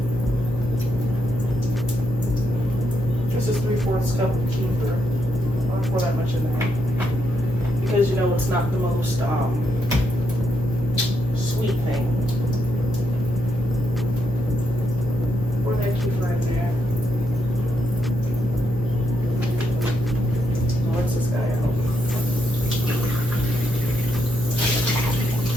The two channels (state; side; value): noise; left; hum, 8 dB below the sound